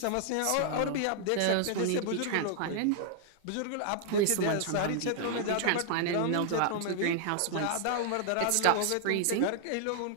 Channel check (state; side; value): different; both; correlation -0.01